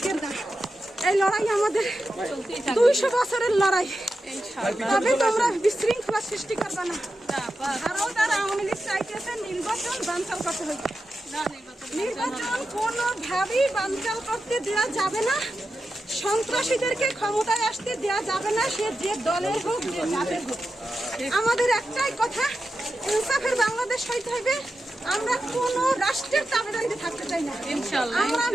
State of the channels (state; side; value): normal; both; correlation 0.90